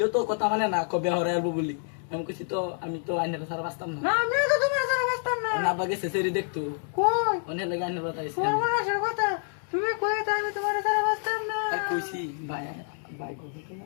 তো কথা মানে না কবে হরে আলবো বলি আমি কইছি তো আমি তো আইনারা সারা বাস্তাম না না আমি তো তোমার সাথে বসতাম না না আব্বা গেছে সেরি দেখতো কই অনেক লাগে আইনারা তাইছে সর্বনাশের কথা তুমি কই তা আমি তোমার সাথে বসতাম না আর কইছি ভাই ভাই কইছি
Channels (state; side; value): silent; right; 60 dB below the other